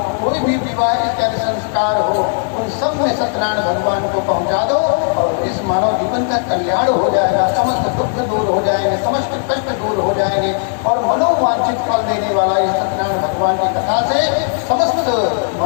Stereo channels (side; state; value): right; silent; digital silence